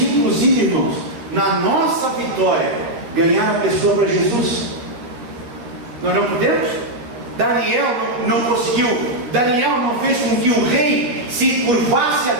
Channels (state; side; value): late; left; 13 ms